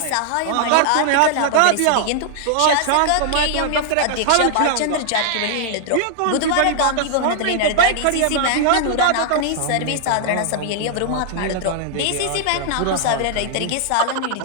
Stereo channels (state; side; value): different; both; correlation -0.01